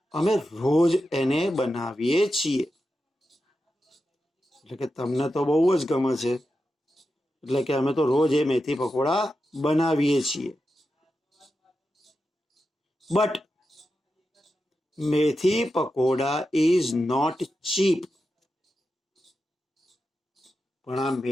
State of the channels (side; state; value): both; normal; correlation 0.90